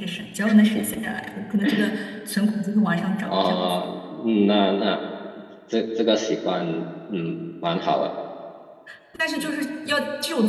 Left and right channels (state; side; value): identical; both; correlation 1.00